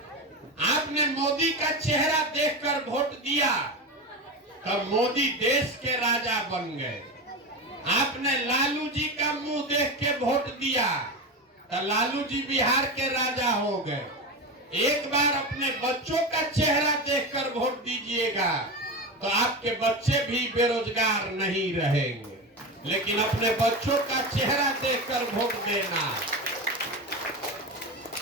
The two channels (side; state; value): both; normal; correlation 0.21